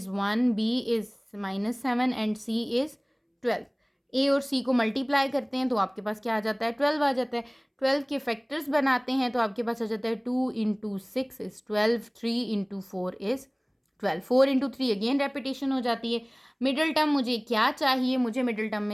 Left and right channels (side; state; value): both; identical; correlation 1.00